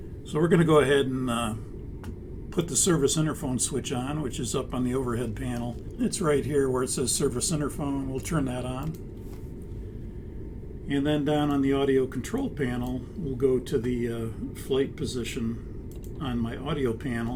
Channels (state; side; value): identical; both; correlation 1.00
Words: So we're going to go ahead and put the service interphone switch on, which is up on the overhead panel. It's right here where it says service interphone. We'll turn that on. And then down on the audio control panel, we'll go to the flight position on my audio